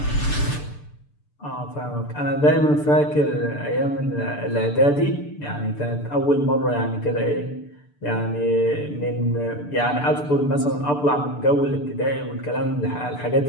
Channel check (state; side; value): late; right; 6.8 ms